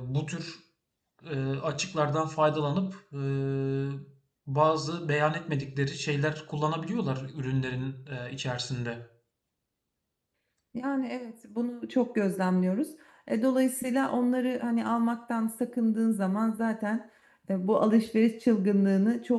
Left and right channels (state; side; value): identical; both; correlation 1.00